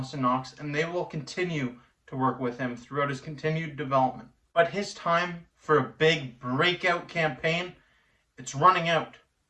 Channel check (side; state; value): both; identical; correlation 1.00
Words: Knox, and they will continue to work with him throughout his continued development. But his time for a big breakout campaign, it's running out.